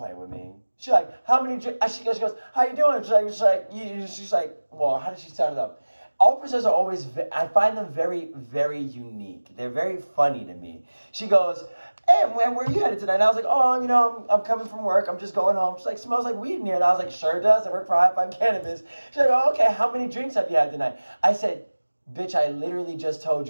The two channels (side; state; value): both; inverted; correlation -1.00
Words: with me. She's like, how many, she goes, how you doing? She's like, well, how did she start it up? Officers are always, I find them very, very unique. They're very funny to me. She goes, hey, where are you headed tonight? And I was like, oh, you know, I'm coming from work. I'm just going home. She's like, smells like weed in here. And I was like, sure does. I work for HIGH-5 Cannabis. She's like, oh, okay, how many drinks have you had tonight? I said, bitch, I literally just told